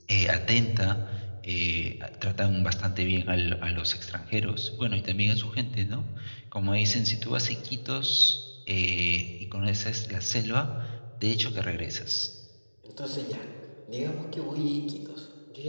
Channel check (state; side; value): inverted; both; correlation -1.00